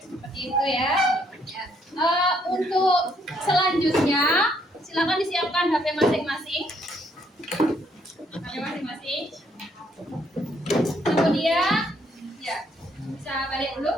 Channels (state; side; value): normal; both; correlation 0.70